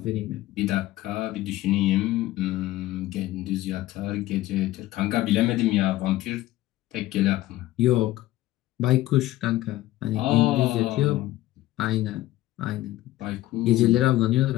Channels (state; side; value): quieter; right; 16.0 dB